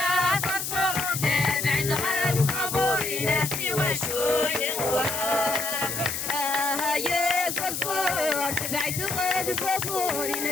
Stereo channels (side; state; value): left; noise; hiss, 4 dB below the sound